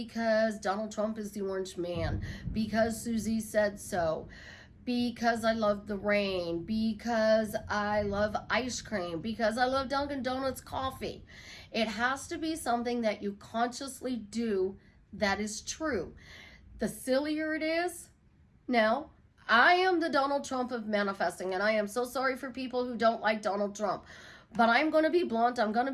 Donald Trump is the orange man, because Susie said so, because I love the rain, because I love ice cream, because I love Dunkin' Donuts coffee. It has to be something that you consciously do that is true. The sillier it is, now, I am the Donald Trump of manifesting, and I am so sorry for people who don't like Donald Trump. But I'm going to be blunt. I'm going to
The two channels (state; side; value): identical; both; correlation 1.00